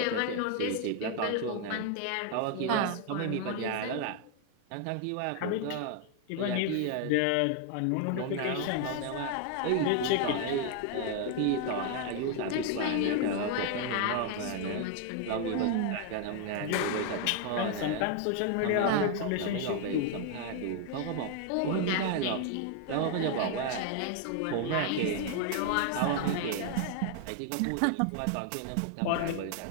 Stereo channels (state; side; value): different; both; correlation 0.00